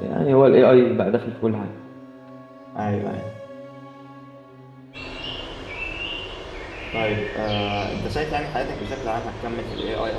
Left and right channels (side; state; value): both; identical; correlation 1.00